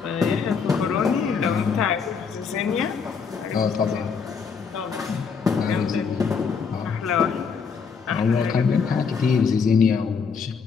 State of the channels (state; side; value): quieter; right; 5.8 dB